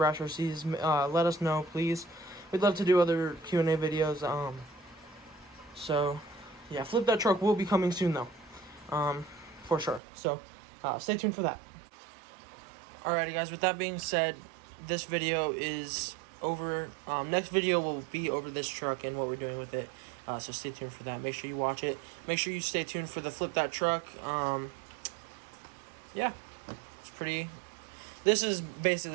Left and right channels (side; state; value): left; drops out; at 10.0 s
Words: Rc'S, let us know, please. We'd love to do other Q&A videos. So yeah, Flip That Truck will be coming soon though, for sure. So stay tuned for that. Alrighty guys, with that being said, this video is over. Next video will be over this truck and what we're doing with it. So stay tuned for that. Make sure you watch it. Make sure you stay tuned for the Flip That Truck. Yeah, it's pretty. This is